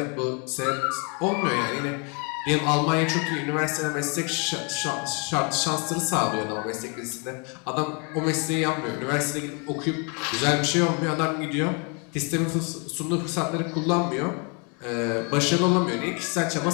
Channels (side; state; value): right; quieter; 34.9 dB